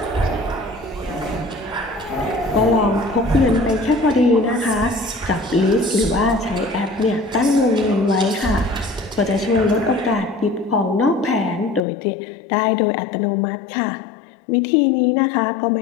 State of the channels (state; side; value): drops out; right; at 11.8 s